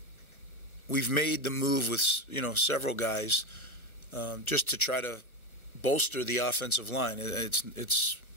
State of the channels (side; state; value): right; late; 1.3 ms